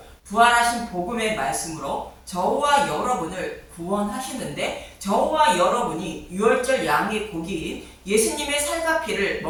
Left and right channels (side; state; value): both; identical; correlation 1.00